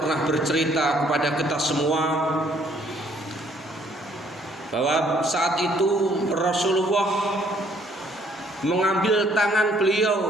bercerita kepada kita semua bahwa saat itu Rasulullah mengambil tangan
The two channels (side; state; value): both; normal; correlation 0.64